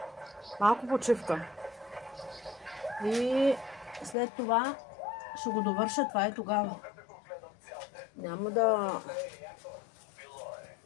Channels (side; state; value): right; drops out; at 4.2 s